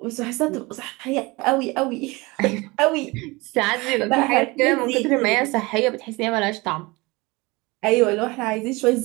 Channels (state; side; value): quieter; left; 23.8 dB